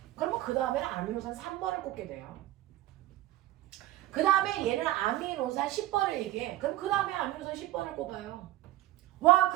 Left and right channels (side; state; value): left; quieter; 15.6 dB